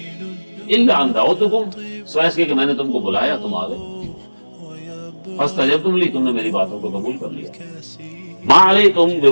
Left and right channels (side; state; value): both; inverted; correlation -1.00